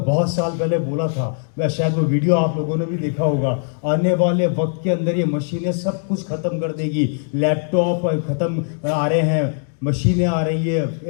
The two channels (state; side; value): silent; right; digital silence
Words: बहुत साल पहले बोला था, मैं शायद वो वीडियो आप लोगों ने भी देखा होगा, आने वाले वक्त के अंदर ये मशीनें सब कुछ खत्म कर देगी। लैपटॉप खत्म आ रहे हैं, मशीनें आ रही है,